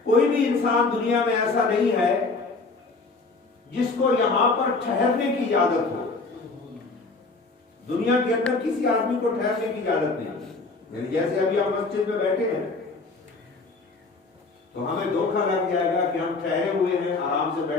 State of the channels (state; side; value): quieter; right; 3.8 dB